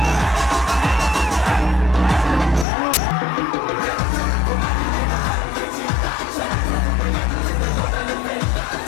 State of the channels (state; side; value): drops out; right; at 2.7 s